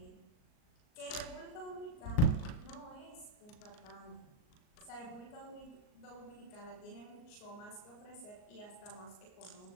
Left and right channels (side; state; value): right; late; 38 ms